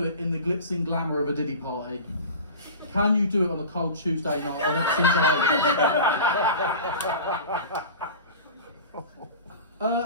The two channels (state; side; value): inverted; both; correlation -0.35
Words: it in the glitz and glamour of a Diddy party. Can you do it on a cold Tuesday night on Epsom Island?